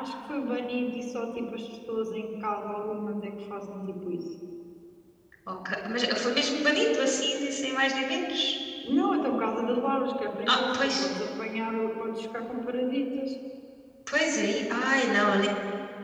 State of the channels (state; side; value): identical; both; correlation 1.00